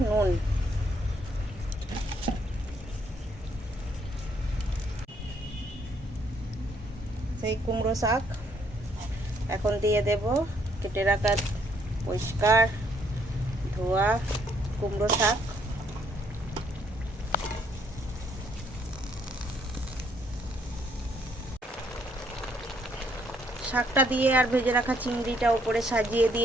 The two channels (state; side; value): normal; both; correlation 0.69